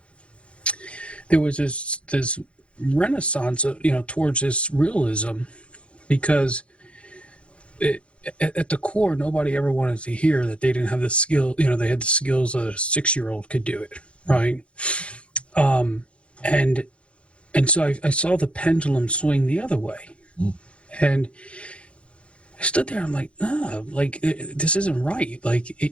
there was this renaissance towards this realism, because at the core, nobody ever wanted to hear that they didn't have the skill. They had the skills that a 6-year-old could do it, right? And so I saw the pendulum swing the other way, and I stood there. I'm like, this isn't right. Like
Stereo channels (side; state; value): right; late; 0.060 ms